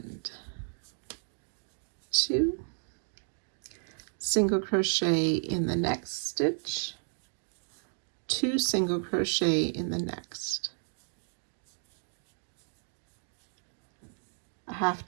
2. Single crochet in the next stitch. 2 single crochet in the next. A half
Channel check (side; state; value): left; silent; digital silence